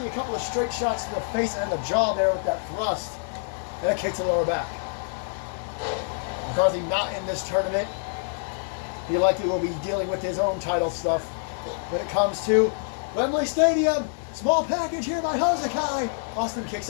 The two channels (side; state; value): right; silent; digital silence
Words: A couple of straight shots to the face and the jaw there with that thrust. And a kick to the lower back. McCarthy not in this tournament. He likely will be dealing with his own title stuff when it comes to Wembley Stadium. Small package here by Hosakai. Austin kicks